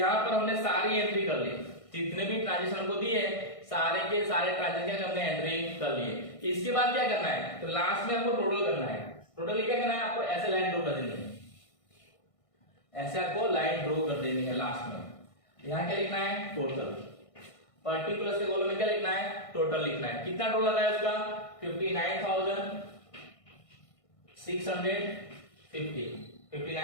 पर हमने सारी एंट्री कर ली, जितने भी ट्रांजेक्शन हमको दिए सारे के सारे ट्रांजेक्शन हमने एंट्री कर लिए। इसके बाद क्या करना है, तो लास्ट में आपको टोटल करना है। टोटल क्या करना है, आपको ऐसे लाइन ड्रॉ कर देनी है, ऐसे आपको लाइन ड्रॉ कर देनी है लास्ट में। यहाँ क्या लिखना है, टोटल, पर्टिकुलर के कॉलम में क्या लिखना है, टोटल लिखना है। कितना टोटल आता है उसका, 59,650,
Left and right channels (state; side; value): late; right; 1.6 ms